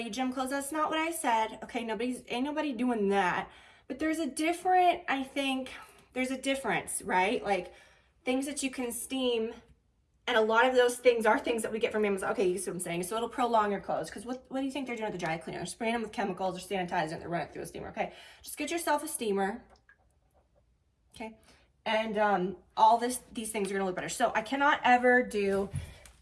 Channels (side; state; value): both; identical; correlation 1.00